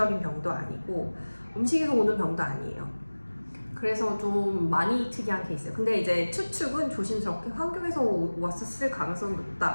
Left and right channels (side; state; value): both; inverted; correlation -1.00